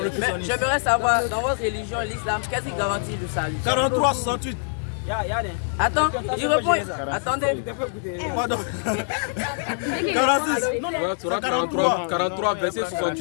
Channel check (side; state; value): right; silent; digital silence